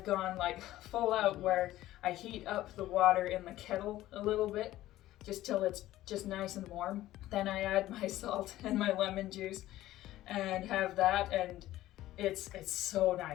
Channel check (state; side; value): quieter; right; 15.0 dB